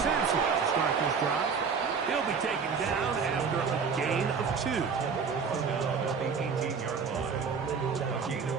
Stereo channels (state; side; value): quieter; left; 5.8 dB